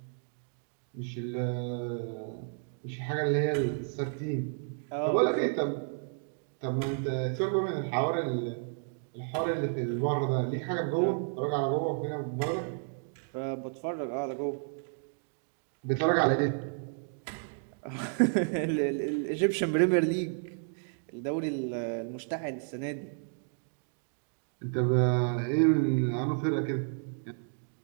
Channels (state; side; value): silent; left; 57 dB below the other